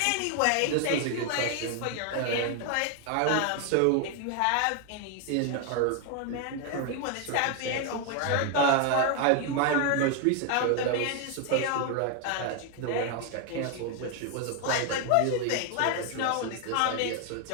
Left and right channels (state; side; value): different; both; correlation 0.01